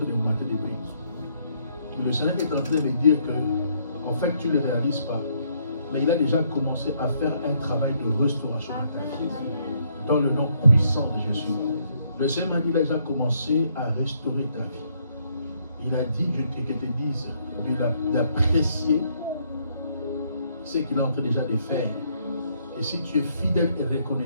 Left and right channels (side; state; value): both; inverted; correlation -0.70